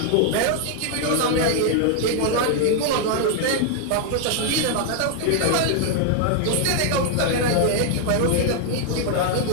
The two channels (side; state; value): both; different; correlation 0.00